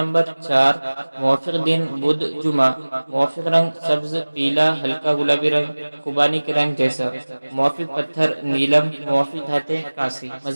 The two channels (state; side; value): inverted; both; correlation -1.00